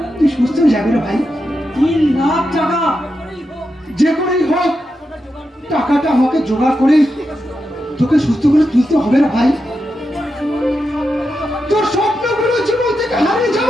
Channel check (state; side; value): normal; both; correlation 0.87